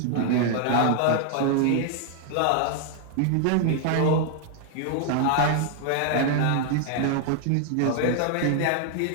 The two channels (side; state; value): both; different; correlation 0.00